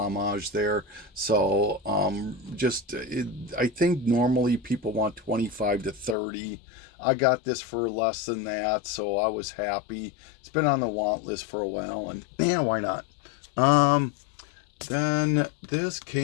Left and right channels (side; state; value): right; drops out; at 6.2 s